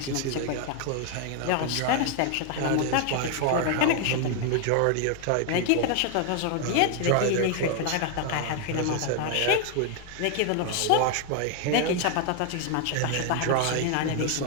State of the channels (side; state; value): both; different; correlation 0.01